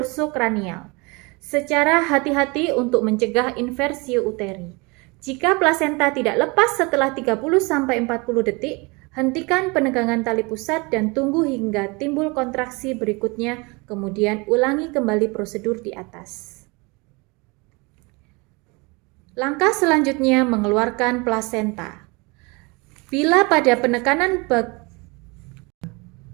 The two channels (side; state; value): left; quieter; 27.3 dB